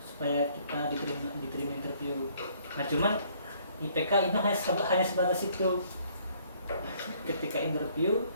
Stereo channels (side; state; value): both; inverted; correlation -0.63